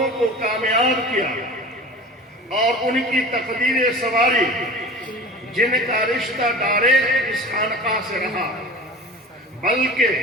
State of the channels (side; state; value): both; normal; correlation 0.37